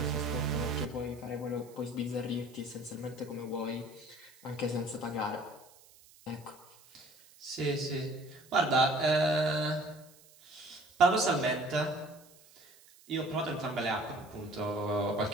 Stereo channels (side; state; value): right; noise; hiss, 25 dB below the sound